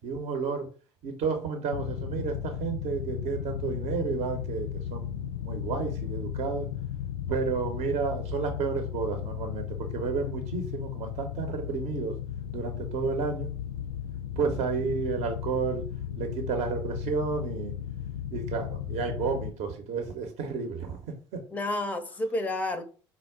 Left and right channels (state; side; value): normal; both; correlation 0.20